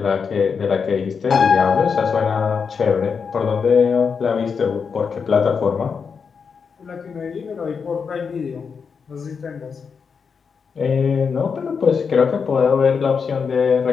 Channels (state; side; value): quieter; right; 5.9 dB